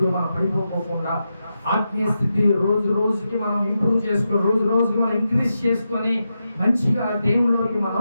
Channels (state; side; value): inverted; both; correlation -0.88